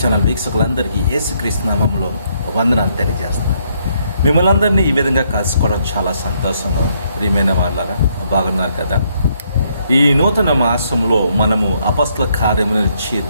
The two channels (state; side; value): inverted; both; correlation -0.72